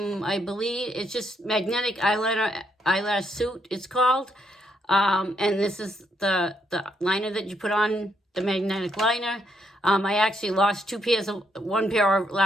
I believe, it's just Magnetic Eyeliner, Eyelash Suit, it's called. And this is the liner that you put on, the magnetic liner. I actually lost one pair of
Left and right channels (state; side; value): normal; both; correlation 0.75